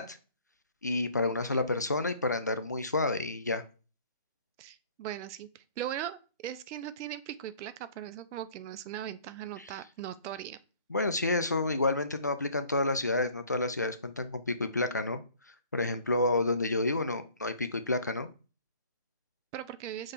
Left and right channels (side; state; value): both; inverted; correlation -0.53